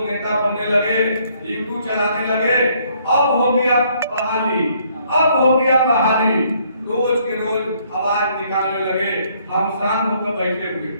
नेता बनने लगे, यूट्यूब चलाने लगे, अब हो गया बहाली, अब हो गया बहाली, रोज के रोज आवाज निकालने लगे। हम शांत होकर बैठे हुए,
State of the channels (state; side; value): inverted; both; correlation -0.66